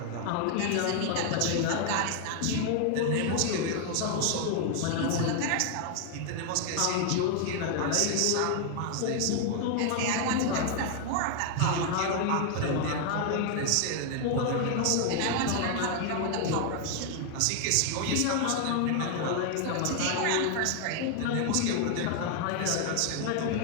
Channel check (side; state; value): both; different; correlation 0.00